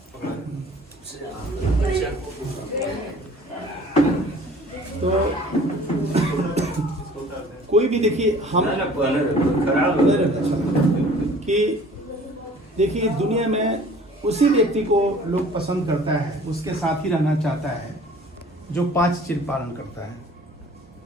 तो कोई भी देखिए हम कि देखिए दुनिया में उसी व्यक्ति को लोग पसंद करता है, उसके साथ ही रहना चाहता है जो 5 चीज पालन करता है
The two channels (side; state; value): both; normal; correlation 0.49